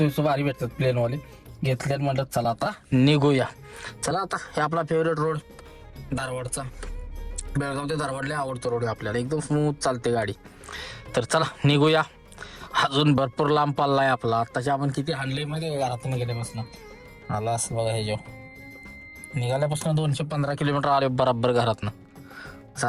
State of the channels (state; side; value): identical; both; correlation 1.00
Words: भारी भेटतात प्लेनवाले घेतल्यात. म्हटलं चला आता निघूया. चला आता हे आपला फेवरेट रोड धारवाडचा. बेळगाव ते धारवाडला आवडतो रोड आपल्याला. एकदम स्मूथ चालते गाडी. तर चला निघूया. अजून भरपूर लांब पाल्ला आपला. आत्ताच्या आपण किती हाणले मध्ये घरातून गेल्यापासून आला असं बघा. हे जेव्हा निघाल्यापासून 215 किलोमीटर आले बराबर घरातनं.